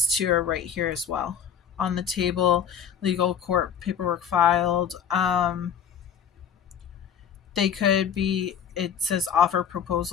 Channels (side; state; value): right; quieter; 8.1 dB